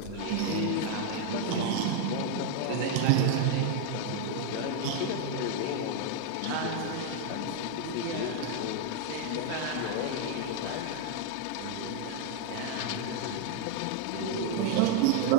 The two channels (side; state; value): both; different; correlation 0.00